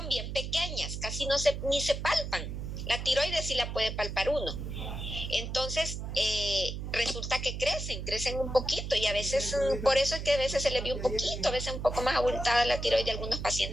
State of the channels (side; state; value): right; noise; hum, 6 dB below the sound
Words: bien pequeñas, casi ni se palpan. La tiroides sí la puede palpar uno. Entonces, resulta que crecen un poquito, y a veces, por eso es que a veces se les ve un poquito, a veces un poco más abultada la tiroides de algunos